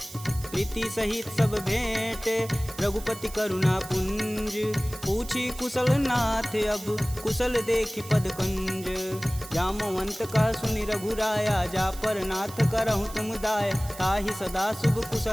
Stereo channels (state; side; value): noise; right; hiss, 15 dB below the sound